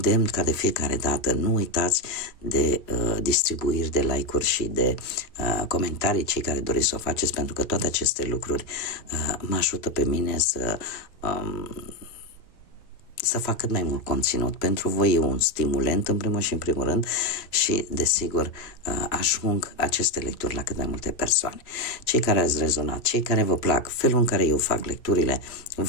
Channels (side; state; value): right; late; 3.0 ms